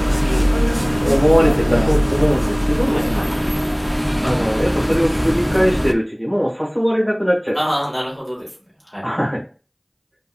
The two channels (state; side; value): identical; both; correlation 1.00